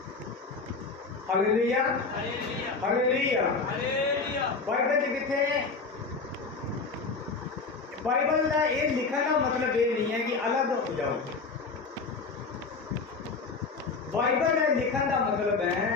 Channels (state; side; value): quieter; right; 4.3 dB